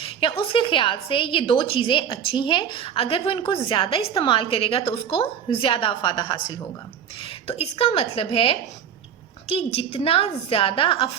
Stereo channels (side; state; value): left; quieter; 8.3 dB